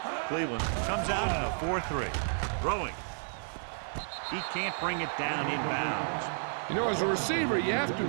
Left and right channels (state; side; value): silent; left; digital silence